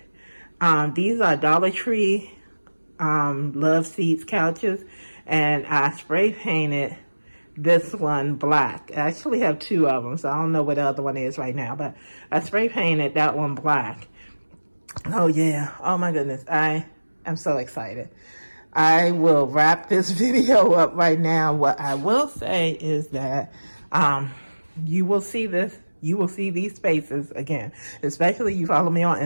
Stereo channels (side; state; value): both; inverted; correlation -1.00